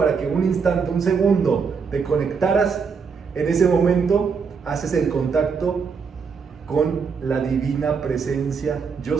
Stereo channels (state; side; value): quieter; left; 5.7 dB